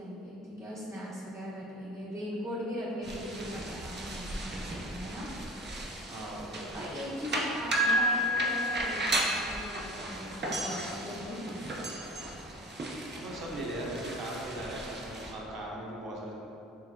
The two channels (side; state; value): both; normal; correlation 0.39